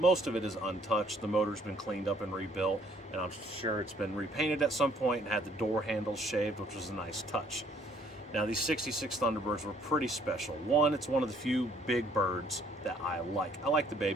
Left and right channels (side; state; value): both; normal; correlation 0.63